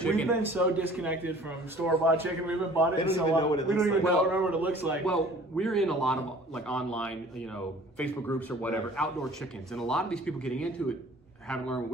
We've been so disconnected from store-bought chicken. We haven't bought it. They don't even know what it looks like. We don't even remember what it looks like. Well, we're in a lot of like online, Facebook groups or whatever, outdoor chickens, and a lot of these people getting into it haven't learned what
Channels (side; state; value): both; normal; correlation 0.49